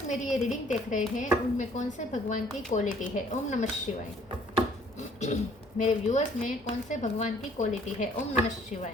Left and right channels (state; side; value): normal; both; correlation 0.59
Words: मेरी ये रीडिंग देख रहे हैं उनमें कौन से भगवान की क्वालिटी है। ओम नमः शिवाय। मेरे व्यूअर्स में कौन से भगवान की क्वालिटी है। ओम नमः